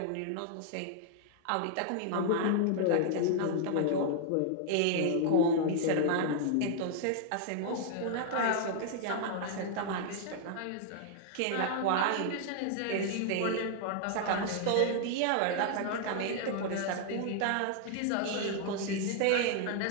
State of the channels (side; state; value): both; different; correlation 0.00